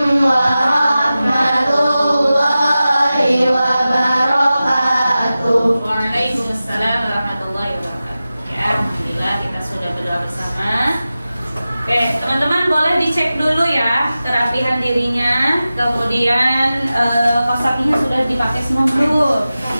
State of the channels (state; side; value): inverted; both; correlation -0.95